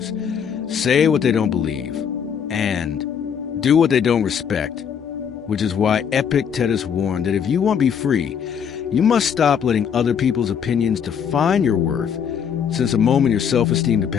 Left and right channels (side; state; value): right; quieter; 7.6 dB